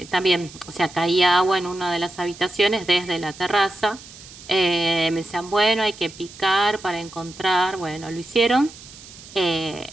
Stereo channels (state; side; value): noise; right; hiss, 18 dB below the sound